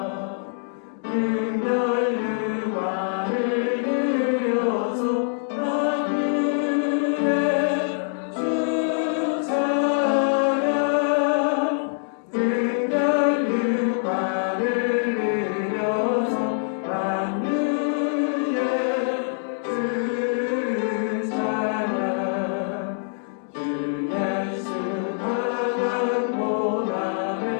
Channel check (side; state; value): right; silent; digital silence